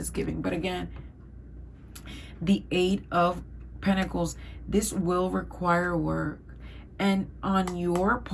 giving. But again, the Eight of Pentacles, this will require work. And on your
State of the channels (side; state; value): both; identical; correlation 1.00